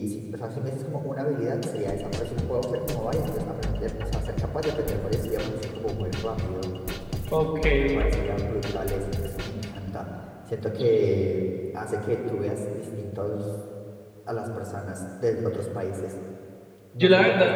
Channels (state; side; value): identical; both; correlation 1.00